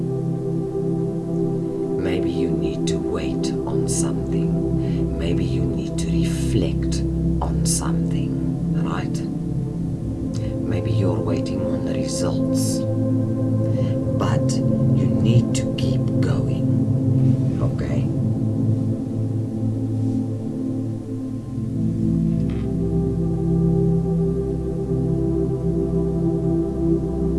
Maybe you need to wait on something. Maybe you need to reflect on something, right? Maybe you're waiting on the results. But you need to keep going, okay?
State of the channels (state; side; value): identical; both; correlation 1.00